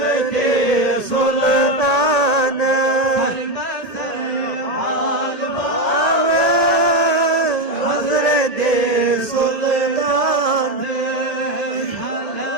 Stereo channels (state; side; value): late; right; 1.8 ms